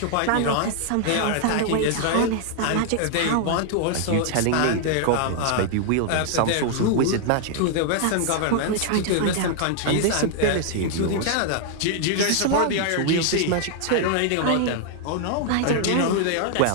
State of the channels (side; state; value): both; different; correlation 0.00